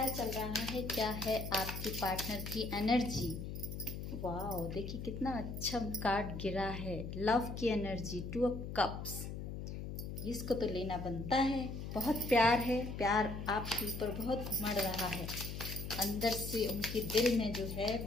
चल रहा है, क्या है आपके पार्टनर की एनर्जी। वाह, देखिए कितना अच्छा कार्ड गिरा है। लव की एनर्जी, 2 ऑफ कप्स। इसको तो लेना बनता है। बहुत प्यार है, प्यार आपके ऊपर बहुत उमड़ रहा है। अंदर से उनके दिल में जो है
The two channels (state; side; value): noise; left; hum, 6 dB below the sound